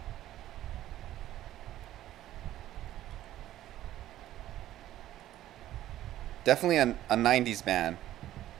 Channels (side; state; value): left; quieter; 13.2 dB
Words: Definitely a 90s band.